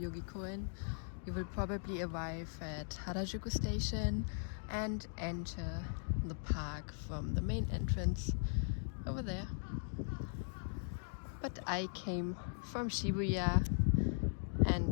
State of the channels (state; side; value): silent; right; digital silence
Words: Koen, you will probably arrive at Harajuku Station and enter the park from the main entrance over there. But I came from Shibuya